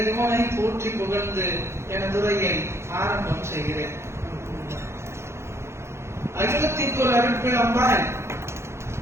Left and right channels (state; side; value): late; left; 0.13 ms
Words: போற்றி புகழ்ந்து எனது உரையை ஆரம்பம் செய்கிறேன். அகிலத்திற்கு ஒரு அருட்பிழம்பாய்